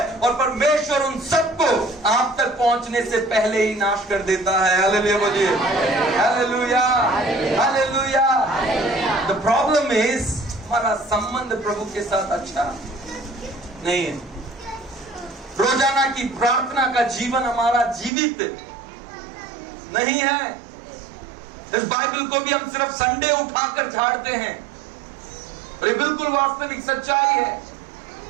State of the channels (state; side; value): drops out; left; at 18.1 s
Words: और परमेश्वर उन सबको आप तक पहुंचने से पहले ही नाश कर देता है। हालेलुया बोलिए, hallelujah, hallelujah. The problem is हमारा संबंध प्रभु के साथ अच्छा नहीं है। रोजाना की प्रार्थना का जीवन हमारा जीवित नहीं है। इस बाइबल को भी हम सिर्फ संडे उठाकर झाड़ते हैं, और ये बिल्कुल वास्तविक सच्चाई है।